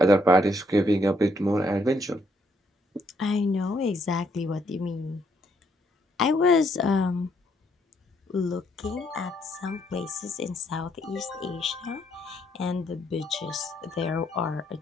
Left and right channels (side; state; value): both; normal; correlation 0.72